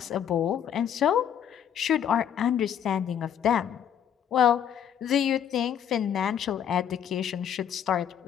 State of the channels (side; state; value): right; quieter; 9.0 dB